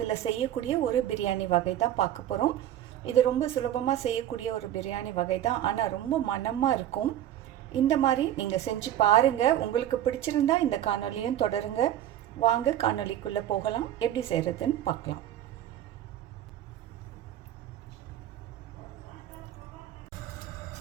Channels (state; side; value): quieter; left; 11.8 dB